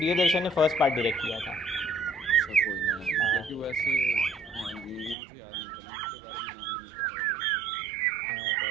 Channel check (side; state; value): left; drops out; at 5.2 s